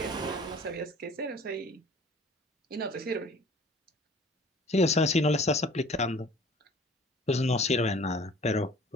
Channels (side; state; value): both; normal; correlation 0.48